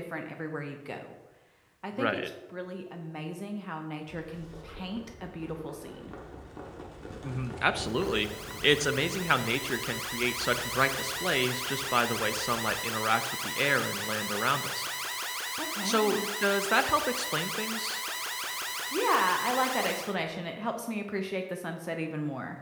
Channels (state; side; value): identical; both; correlation 1.00